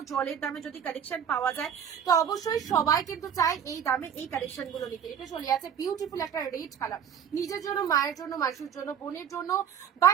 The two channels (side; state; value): left; quieter; 8.4 dB